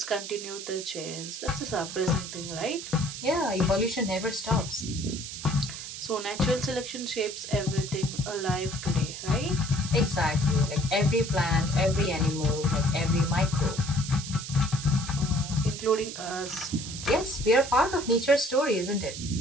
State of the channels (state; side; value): noise; right; hiss, 9 dB below the sound